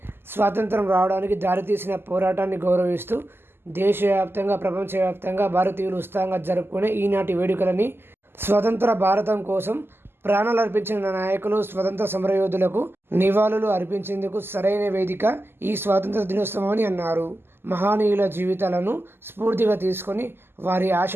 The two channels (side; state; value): left; late; 0.11 ms